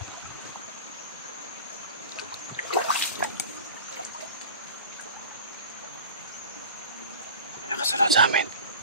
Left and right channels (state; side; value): inverted; both; correlation -0.37